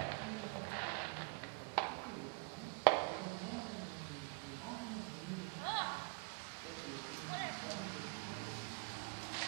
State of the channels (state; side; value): quieter; left; 37.7 dB